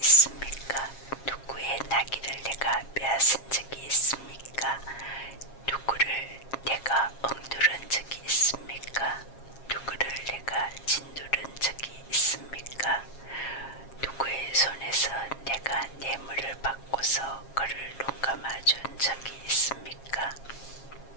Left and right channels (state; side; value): late; right; 7.4 ms